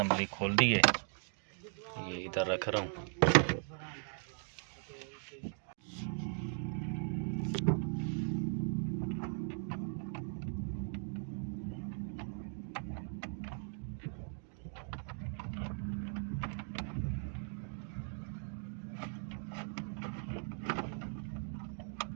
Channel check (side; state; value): left; silent; 52 dB below the other